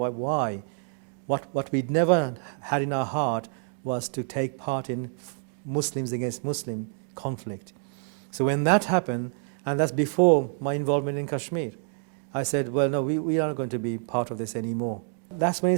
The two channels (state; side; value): silent; left; 55 dB below the other